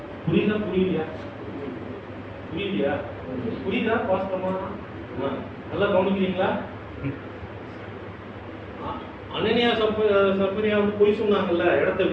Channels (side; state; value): both; identical; correlation 1.00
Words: புரியுதா? புரியுதா? வாஸ்தவமா நல்லா கவனிக்கிறீங்களா? அனனியா சப்பரியா வந்து பொய் சொன்னாங்கல்ல, இடத்த